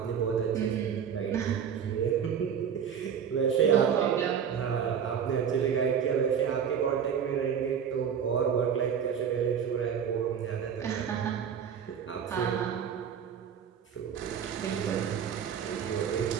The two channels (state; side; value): quieter; left; 7.8 dB